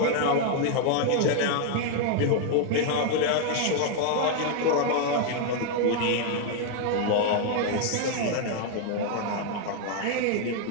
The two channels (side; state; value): both; different; correlation 0.00